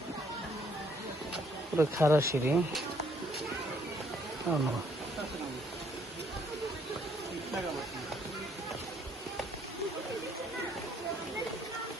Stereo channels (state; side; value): normal; both; correlation 0.66